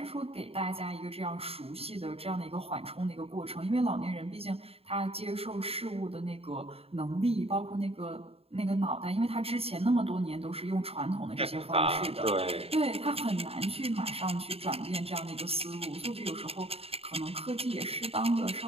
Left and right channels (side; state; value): left; late; 0.28 ms